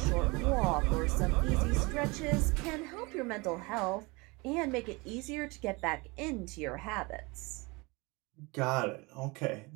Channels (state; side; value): quieter; left; 26.0 dB